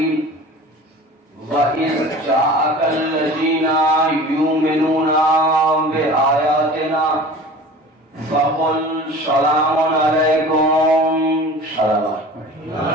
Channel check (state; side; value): normal; both; correlation 0.40